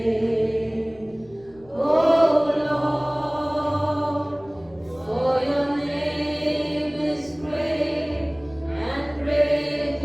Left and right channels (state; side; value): noise; left; rumble, 26 dB below the sound